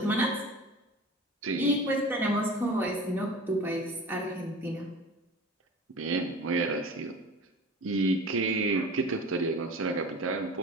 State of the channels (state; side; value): normal; both; correlation 0.38